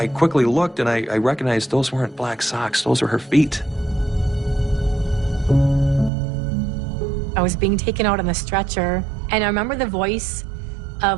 quickly looked, and I recognized those weren't black socks. Those were her feet. I was being taken out on the stretcher, and I remember the voice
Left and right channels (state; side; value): drops out; left; at 6.1 s